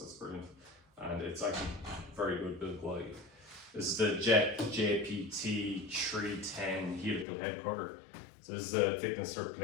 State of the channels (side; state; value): right; drops out; at 7.2 s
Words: brilliant. And it's actually very good build quality. This is the Jet JPT 310 helical head cutter. So this is a thickness strip